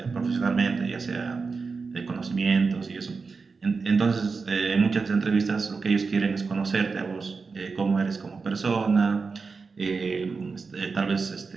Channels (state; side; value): quieter; left; 4.7 dB